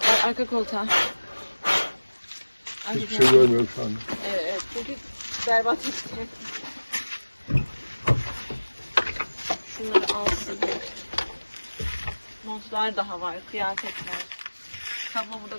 var arka koltuğa. Hiçbir şey görmüyorum şu anda. Evet çünkü berbat işte. Şunları alsın. Montlar daha var, kıyafetler. Kablo burada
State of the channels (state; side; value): inverted; both; correlation -1.00